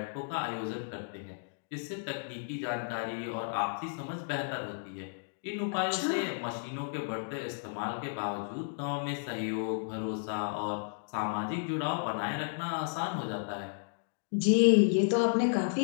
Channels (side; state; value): right; silent; digital silence